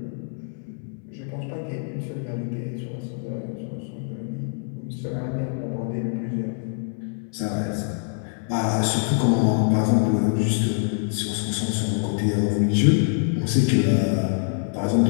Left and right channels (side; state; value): right; silent; 62 dB below the other